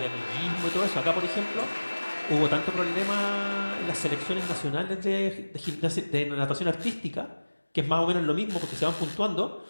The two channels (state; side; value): inverted; both; correlation -1.00